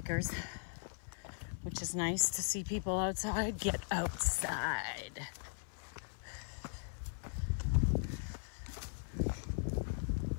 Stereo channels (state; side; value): silent; right; 52 dB below the other